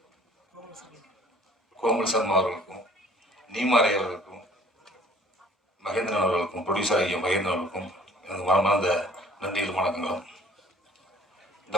கோமல் சர்மா அவர்களுக்கும், நீமாரை அவர்களுக்கும், மகேந்திரன் அவர்களுக்கும், ப்ரொடியூசர் ஐயா மகேந்திரன் அவர்களுக்கும் எனக்கு மனமார்ந்த நன்றிகள் வணக்கங்களும். இந்த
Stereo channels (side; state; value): both; normal; correlation 0.54